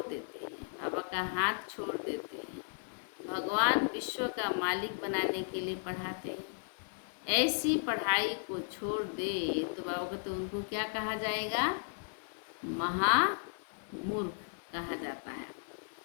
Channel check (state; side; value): silent; right; 54 dB below the other